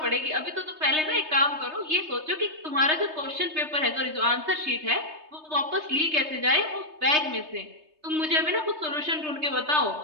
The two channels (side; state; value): left; late; 3.2 ms